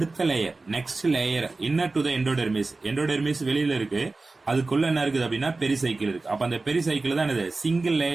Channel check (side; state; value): left; quieter; 3.5 dB